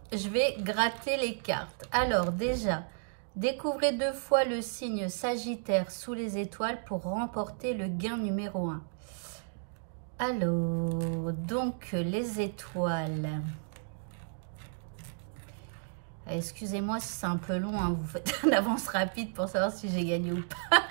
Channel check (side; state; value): left; silent; digital silence